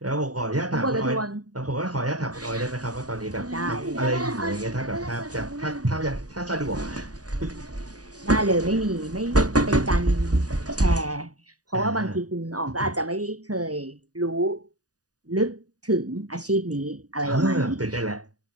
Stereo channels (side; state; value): left; late; 0.68 ms